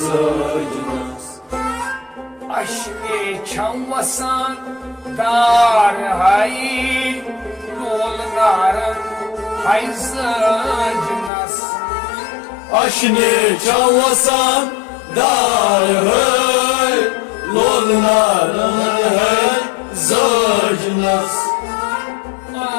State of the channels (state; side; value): drops out; right; at 11.3 s